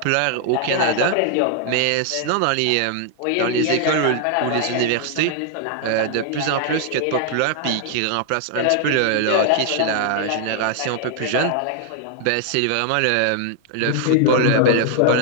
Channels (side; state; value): both; different; correlation 0.00